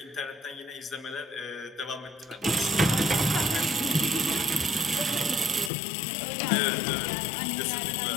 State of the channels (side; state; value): right; drops out; at 5.7 s